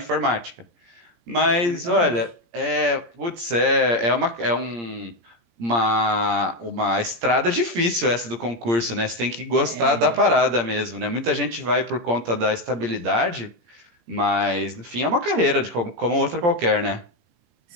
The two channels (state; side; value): late; left; 17 ms